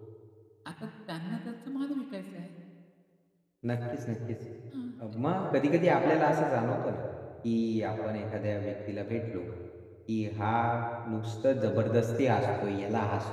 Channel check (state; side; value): identical; both; correlation 1.00